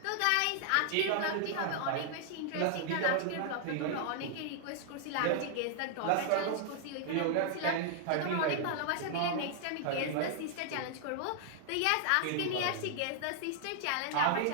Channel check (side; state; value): both; different; correlation -0.01